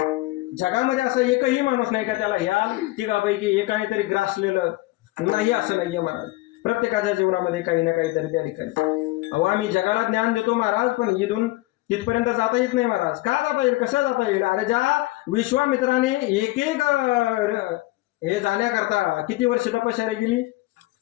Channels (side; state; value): right; quieter; 19.8 dB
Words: जगामध्ये असा एकही माणूस नाही का त्याला ह्या तिघापैकी एकाने तरी ग्रासलेलं नाही असं नाहीये महाराज. प्रत्येकाच्या जीवनामध्ये काही ना काहीतरी त्या ठिकाणी. अहो आम्ही जगाला ज्ञान देतो महाराज, पण इथून तिथपर्यंत जाता येत नाही महाराज. का जाता येईल, कसं जाता येईल? अरे ज्या विश्वामित्राने एक हे जाण्याकरता किती वर्ष तपश्चर्या केली?